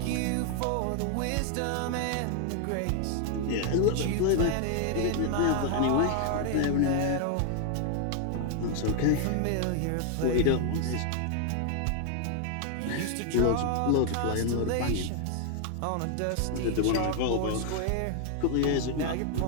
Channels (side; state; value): both; different; correlation 0.00